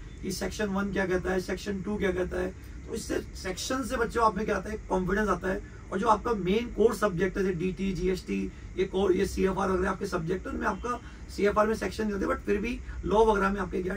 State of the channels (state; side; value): identical; both; correlation 1.00